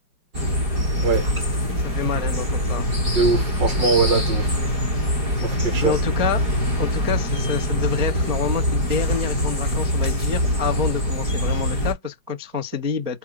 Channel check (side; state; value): left; late; 4.9 ms